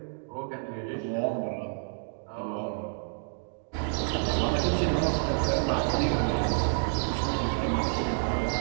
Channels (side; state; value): left; silent; digital silence